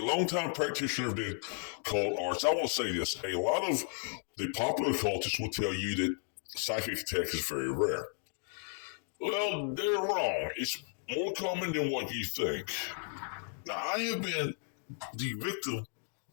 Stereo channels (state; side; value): silent; right; 55 dB below the other